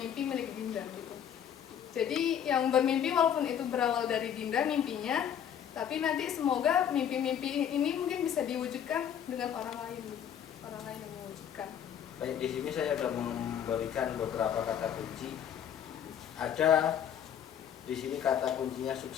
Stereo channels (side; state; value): right; quieter; 9.0 dB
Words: milik Dinda gitu. Jadi yang bermimpi walaupun itu berawal dari Dinda mimpinya, tapi nanti semoga mimpi-mimpi ini mungkin bisa diwujudkan dengan orang lain gitu. Orang lain yang mewujudkan. Baik, di sini saya sudah memberikan beberapa kata kunci. Ada di sini kata kuncinya